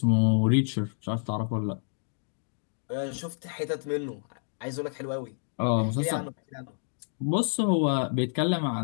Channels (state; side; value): silent; right; digital silence